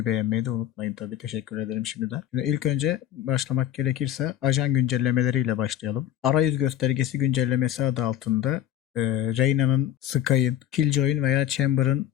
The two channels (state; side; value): quieter; right; 11.6 dB